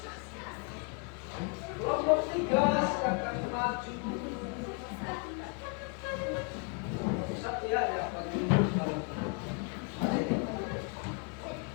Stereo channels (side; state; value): right; quieter; 36.6 dB